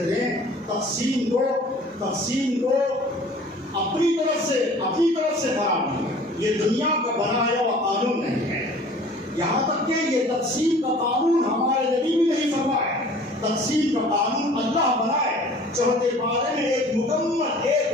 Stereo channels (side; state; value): both; normal; correlation 0.48